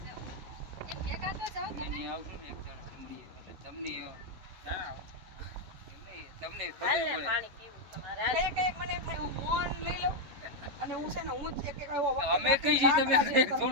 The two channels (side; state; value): left; late; 11 ms